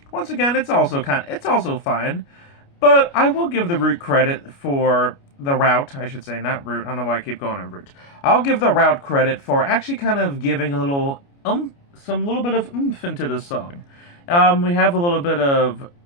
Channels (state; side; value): late; right; 29 ms